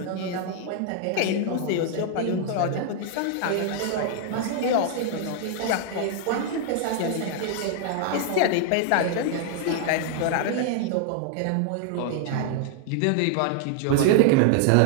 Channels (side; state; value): both; different; correlation 0.00